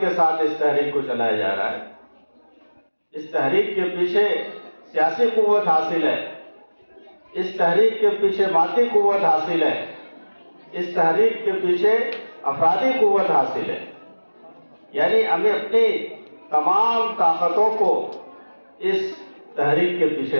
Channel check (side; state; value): both; inverted; correlation -1.00